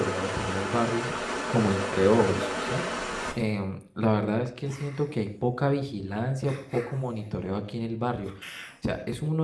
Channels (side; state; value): both; identical; correlation 1.00